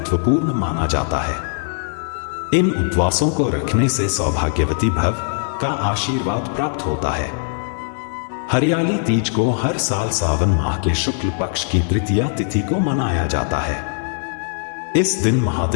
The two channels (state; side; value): silent; right; digital silence